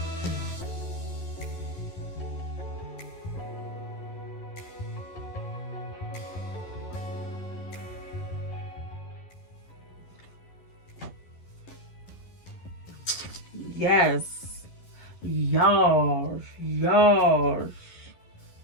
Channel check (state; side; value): late; right; 11 ms